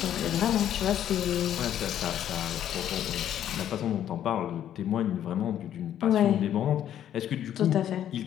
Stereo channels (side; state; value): right; quieter; 10.7 dB